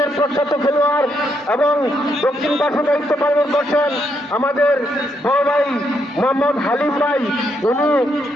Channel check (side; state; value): both; normal; correlation 0.77